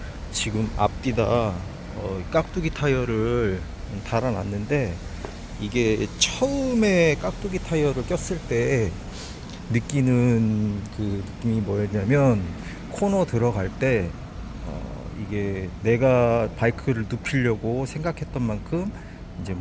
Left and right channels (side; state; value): both; identical; correlation 1.00